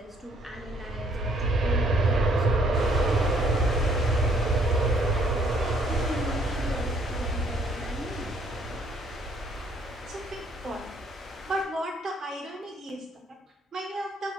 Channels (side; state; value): both; normal; correlation 0.64